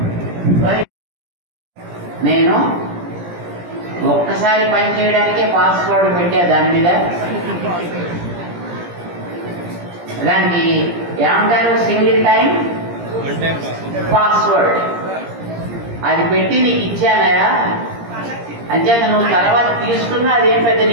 నేను ఒక్కసారి పని చేయడానికే పాస్వర్డ్ పెట్టా. దాని మీద దానికి ఏమంటారు? Single time password. అది పెట్టి నీకు ఇచ్చానయా, అంచేత నువ్వు తర్వాత తీసుకున్నా అదేం పెద్ద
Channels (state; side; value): late; left; 17 ms